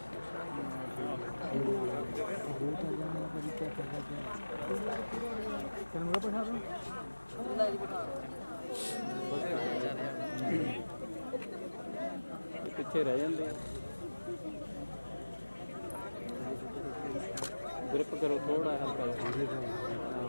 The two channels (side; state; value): both; inverted; correlation -1.00